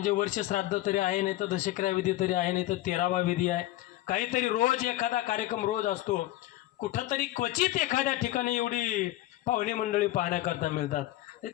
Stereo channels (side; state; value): right; quieter; 16.0 dB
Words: वर्ष श्राद्ध तरी आहे, नाही तर दशक्रिया विधी तरी आहे, नाही तर 13वा विधी आहे. काहीतरी रोज एखादा कार्यक्रम रोज असतो. कुठंतरी क्वचित एखाद्या ठिकाणी एवढी पाहुणे मंडळी पाहण्याकरता मिळतात. ते